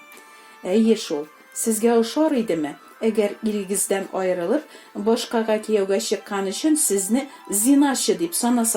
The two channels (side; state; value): both; identical; correlation 1.00